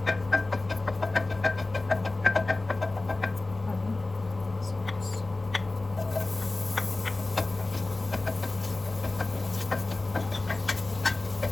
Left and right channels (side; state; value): right; quieter; 3.1 dB